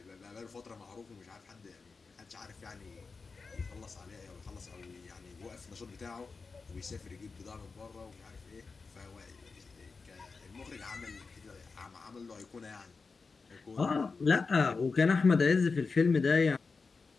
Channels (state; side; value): quieter; right; 4.5 dB